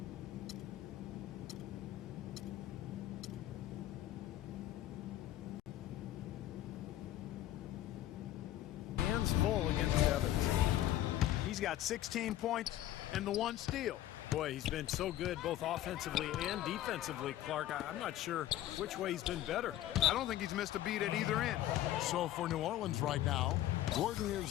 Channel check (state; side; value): quieter; right; 13.6 dB